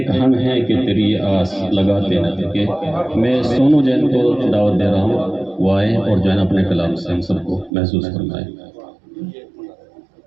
हम हैं कि तेरी आस लगाते न थके। मैं सोनू जैन को दावत दे रहा हूँ, वो आए और जो है अपने कलाम से हम सबको महसूस फरमाए।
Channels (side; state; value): left; drops out; at 7.7 s